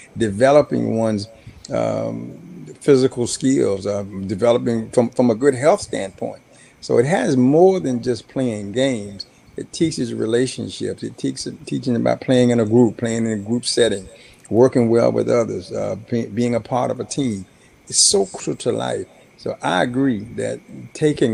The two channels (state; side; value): identical; both; correlation 1.00